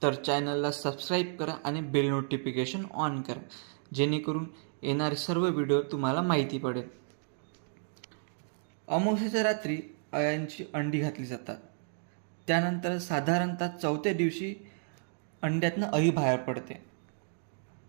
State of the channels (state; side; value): silent; left; digital silence